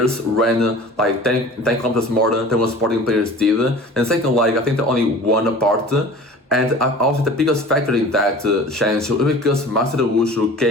ran like 10 kilometers more than what Sporting players did. And second leg, I think they only won apart. And also the biggest factor in that change was because Marcelo Wushu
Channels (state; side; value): normal; both; correlation 0.41